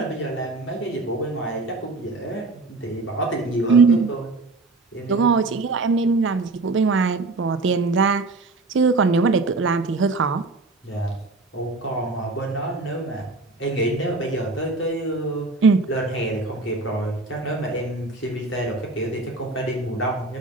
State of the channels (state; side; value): quieter; left; 3.5 dB